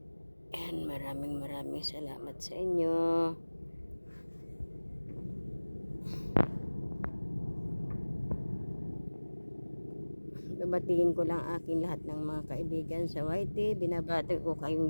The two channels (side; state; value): both; inverted; correlation -1.00